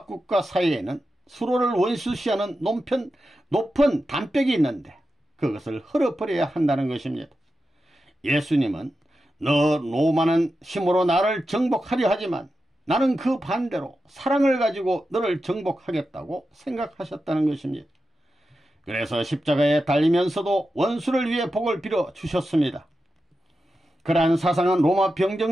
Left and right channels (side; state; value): both; normal; correlation 0.90